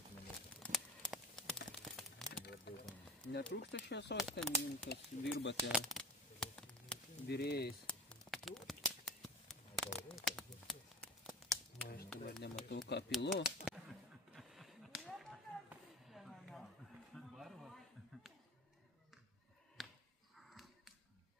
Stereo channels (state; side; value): normal; both; correlation 0.34